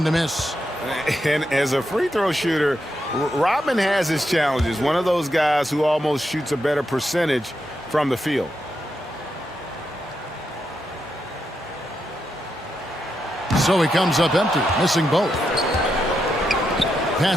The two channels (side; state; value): both; normal; correlation 0.84